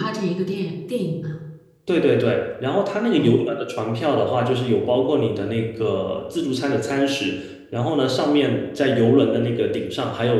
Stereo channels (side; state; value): both; identical; correlation 1.00